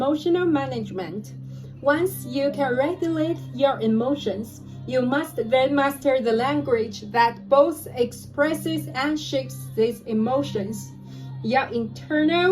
management. Once you can regulate your emotions, you must then master the language that both expresses and shapes these emotions. Your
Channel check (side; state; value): both; identical; correlation 1.00